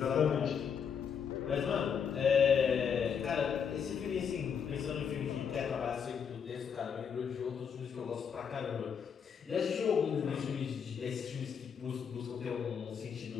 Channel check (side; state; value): right; quieter; 7.0 dB